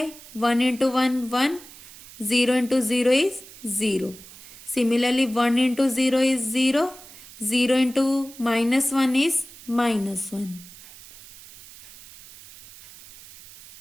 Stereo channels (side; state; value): right; noise; hiss, 19 dB below the sound